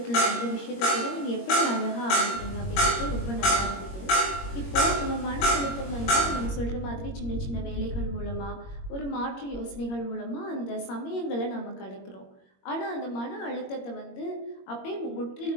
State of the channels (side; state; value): right; late; 21 ms